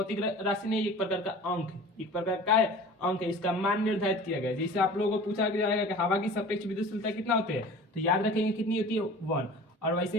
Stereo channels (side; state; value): both; normal; correlation 0.41